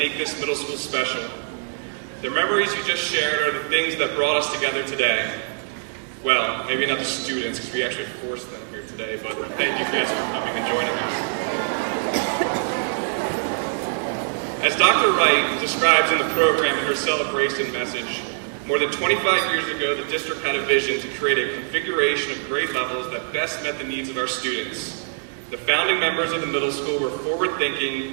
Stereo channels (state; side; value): silent; left; 63 dB below the other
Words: this middle school special. The memories you just shared are the things that brought us together today. Well, maybe not the students, because we actually forced them here today, but thank you guys for coming and joining us. As Dr. Wright describes in the program in her celebration message, more than 25 years ago, the district had a vision to create a configuration of grade levels that best met the needs of our students. The founding members of the middle school were